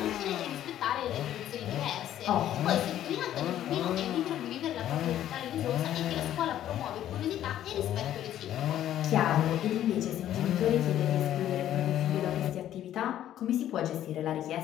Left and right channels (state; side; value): quieter; right; 11.8 dB